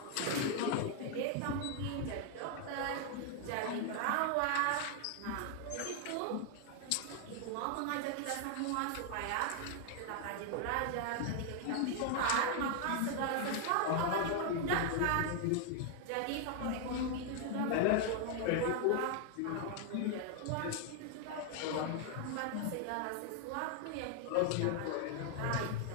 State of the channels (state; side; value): different; both; correlation 0.00